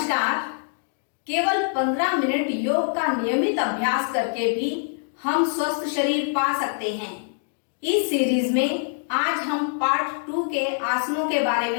केवल 15 मिनट योग का नियमित अभ्यास करके भी हम स्वस्थ शरीर पा सकते हैं। इस सीरीज में आज हम पार्ट 2 के आसनों के बारे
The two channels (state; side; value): silent; right; digital silence